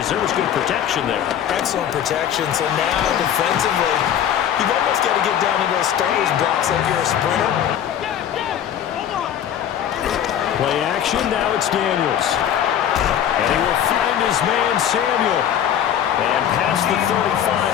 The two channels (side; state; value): right; quieter; 9.9 dB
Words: There was good protection there. Excellent protection. So now defensively, you've almost got to get down into those starters blocks like you're a sprinter. Play action. Now it's Daniels. And he will find his man Samuel. And past the 35,